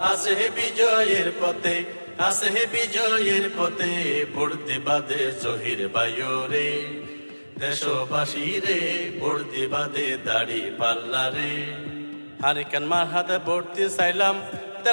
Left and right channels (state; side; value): inverted; both; correlation -1.00